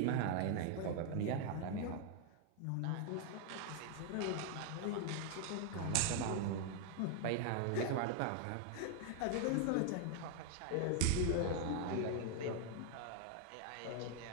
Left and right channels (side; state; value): both; different; correlation 0.00